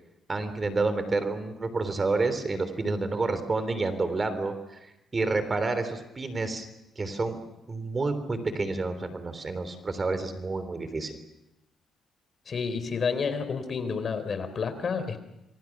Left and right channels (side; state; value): both; normal; correlation 0.87